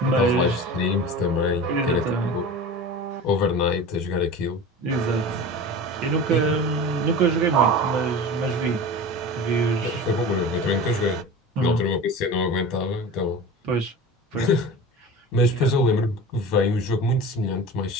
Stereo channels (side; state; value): both; normal; correlation 0.33